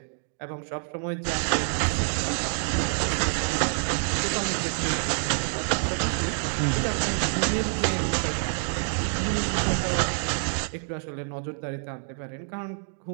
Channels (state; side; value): silent; left; 60 dB below the other